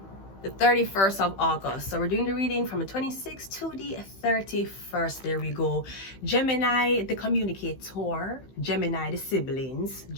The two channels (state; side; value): late; right; 15 ms